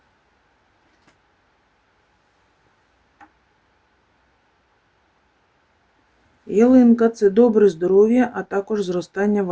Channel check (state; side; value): identical; both; correlation 1.00